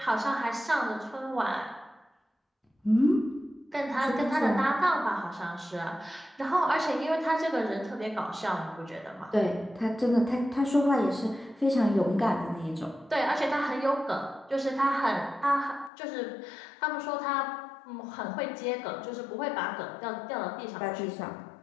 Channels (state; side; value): drops out; right; at 15.9 s